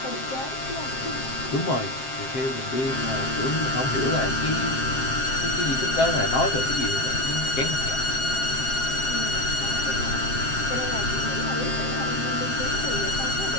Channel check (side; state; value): right; late; 7.6 ms